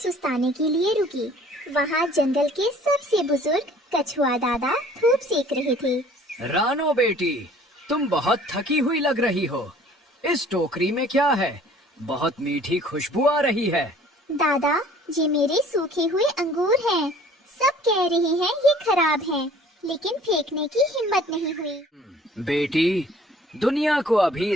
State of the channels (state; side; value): normal; both; correlation 0.52